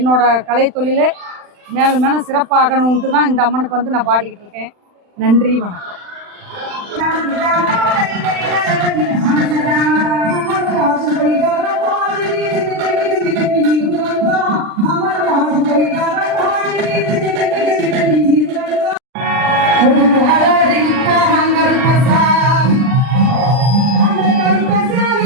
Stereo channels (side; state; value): left; late; 39 ms